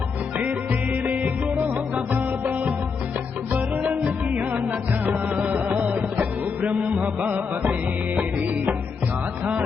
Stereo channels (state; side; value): quieter; right; 5.4 dB